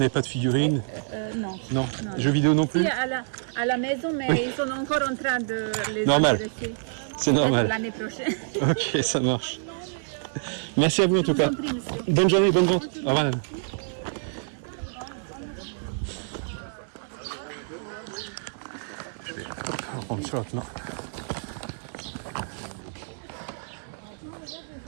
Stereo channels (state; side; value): silent; left; digital silence